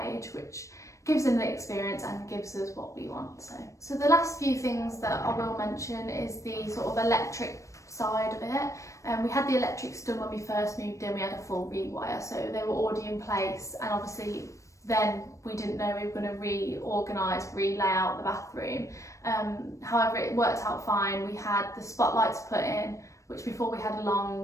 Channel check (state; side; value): late; right; 0.15 ms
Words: which gives them the experience and gives us what we want. So the last few things that I will mention is the sort of electric side of it. We had the electrics done when we first moved in. We had a full rewire, so they were already in place, and obviously then we didn't know we were going to reorganise, relay out the bathroom. However, it worked out fine. We had the spotlights put in, which before we had a